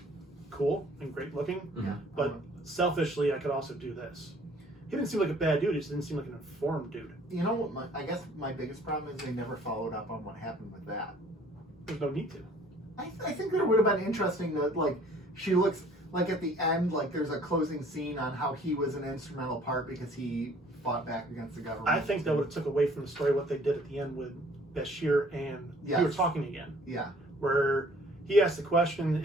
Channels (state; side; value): normal; both; correlation 0.56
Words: cool and great looking, Mhm. but selfishly, I could also do this. He didn't seem like a bad dude. He just didn't seem like an informed dude. You know what? I guess my biggest problem is they never followed up on what happened with that. There's no need to. I think that it would have been interesting that, like, she looks like at the end, like there's a closing scene on how he was an instrumental part because he fought back against the government. I think that would have took away from the story what they did at the end with Bashir and we were talking again. Yeah. Where he asked the